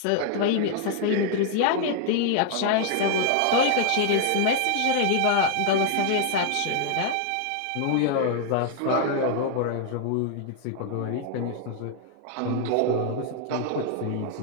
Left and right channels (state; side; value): different; both; correlation 0.00